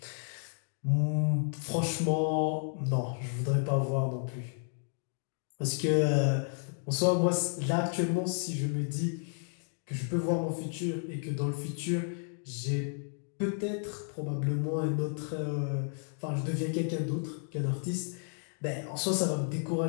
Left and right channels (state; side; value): silent; right; 56 dB below the other